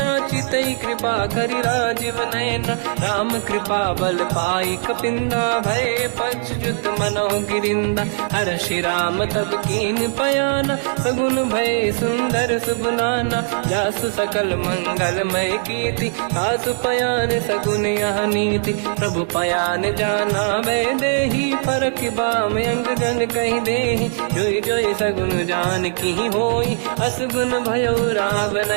चितई कृपा करि राजीव नयना। राम कृपा बल पाई कपिंदा, भय पश्चात मनोह गिरिंदा। हर्षि राम तब कीन पयाना, सगुन भय सुंदर सुगुनाना। जासु सकल मंगलमय कीर्ति, आसु पयान सगुन यह नीति। प्रभु पयान जाना वै देहि, परख बाम अंग गन कहि देहि। जोई जोई सगुन जान की होई, असगुन भयो राव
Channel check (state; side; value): silent; left; digital silence